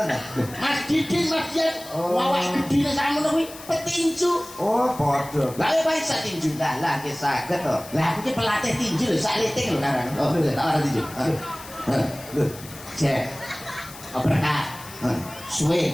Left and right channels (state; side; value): noise; left; hiss, 16 dB below the sound